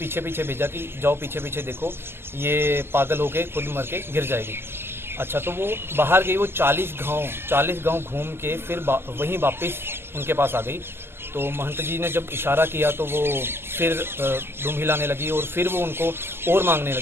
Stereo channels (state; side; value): late; left; 0.11 ms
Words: पीछे भेजा कि जाओ पीछे पीछे देखो, ये पागल होके खुद मर के गिर जाएगी। अच्छा, तो वो बाहर गई, वो 40 गांव घूम के फिर वहीं वापस उनके पास आ गई। तो महंत जी ने जब इशारा किया तो वो फिर दुम हिलाने लगी और फिर वो उनको और मांगने